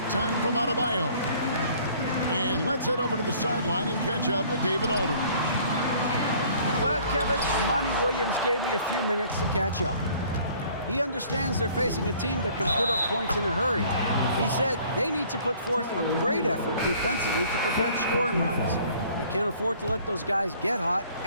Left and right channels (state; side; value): inverted; both; correlation -0.55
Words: time from Adebayo. And let's head over to the sideline and catch up with David Aldridge. Well, Kevin, Monty Williams gave me a few minutes to catch up. He understands they're facing a team that can put up points in a hurry. He said they need to put forth a great effort defensively to prevent scoring runs. They can't afford to let those guys get hot